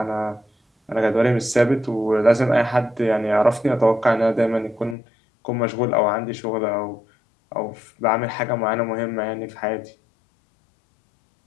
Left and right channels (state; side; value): drops out; right; at 5.0 s